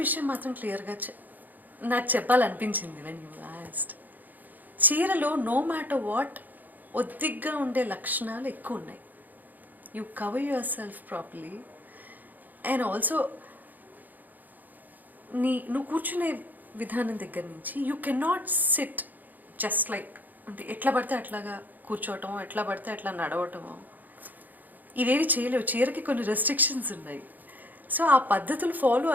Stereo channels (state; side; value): late; left; 0.084 ms